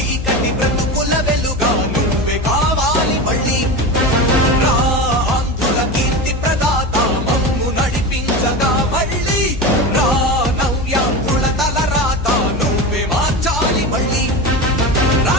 బ్రతుకుల వెలుగా నువ్వే కావాలి మళ్ళీ రా ఆంధ్రుల కీర్తి ప్రదాత మమ్ము నడిపించగా మళ్ళీ రా నవ్యాంధ్రుల తలరాత నువ్వే మార్చాలి మళ్ళీ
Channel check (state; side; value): noise; left; hum, 6 dB below the sound